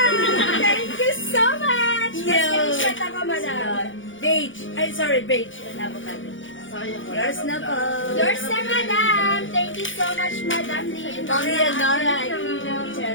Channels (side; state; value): right; late; 0.56 ms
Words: Thank you so much! Yo. Screenshot ako, madam. Beige. Ay, sorry, beige and avocado. Sayang. wala Yours pang na black. po. Yours na, madam! Thank you so much, madam Leonora. Ma'am Leonora, Aquino,